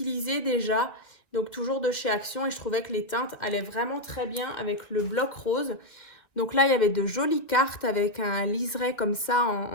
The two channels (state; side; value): late; right; 2.1 ms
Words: déjà. Donc, toujours de chez Action. Et je trouvais que les teintes allaient vraiment très bien avec le bloc rose. Donc là, il y avait de jolies cartes avec un liseré comme ça